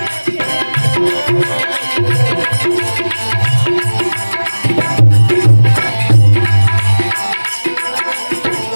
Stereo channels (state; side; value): inverted; both; correlation -1.00